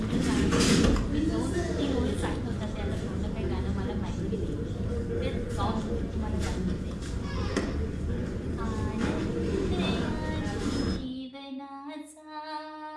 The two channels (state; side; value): identical; both; correlation 1.00